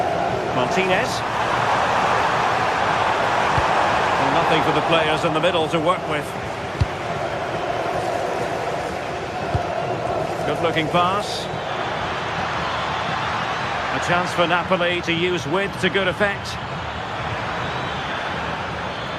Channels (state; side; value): identical; both; correlation 1.00